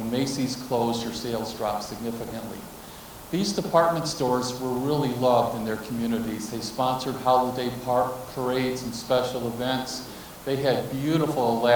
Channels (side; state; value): both; identical; correlation 1.00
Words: Macy's closed, your sales dropped significantly. These department stores were really loved in their communities. They sponsored holiday parades and special events. They had beautiful,